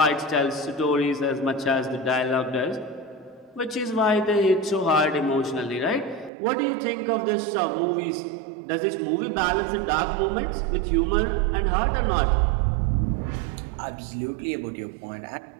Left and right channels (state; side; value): drops out; left; at 6.3 s